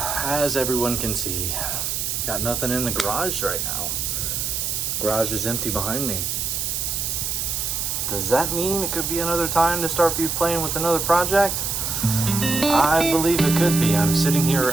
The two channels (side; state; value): right; noise; hiss, 1 dB below the sound